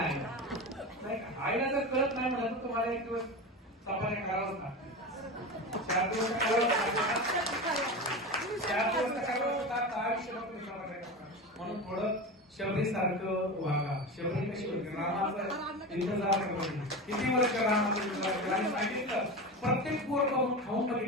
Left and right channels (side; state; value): both; normal; correlation 0.25